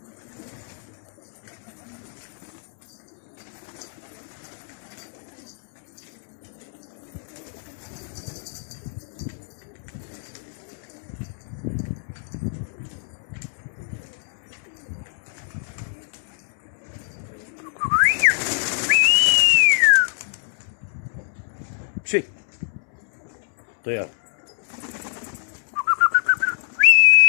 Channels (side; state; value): right; silent; 62 dB below the other